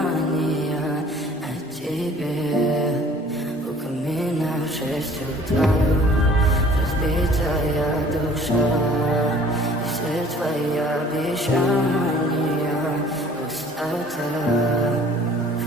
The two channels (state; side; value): normal; both; correlation 0.52